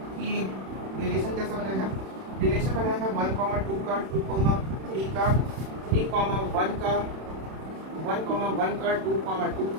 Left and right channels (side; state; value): left; late; 31 ms